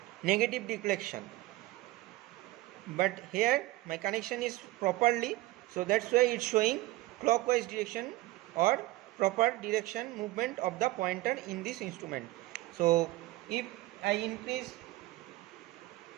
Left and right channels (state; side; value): quieter; left; 18.3 dB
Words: negative deflection. But here my connection is properly, so that's why it's showing clockwise direction or proper direction movement of the pointer in this instrument. So if I increase